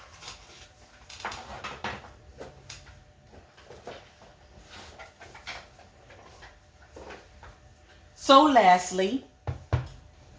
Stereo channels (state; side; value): identical; both; correlation 1.00